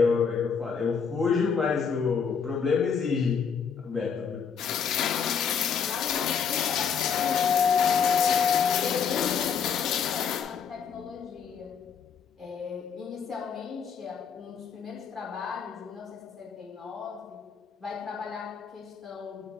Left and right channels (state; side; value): quieter; right; 6.6 dB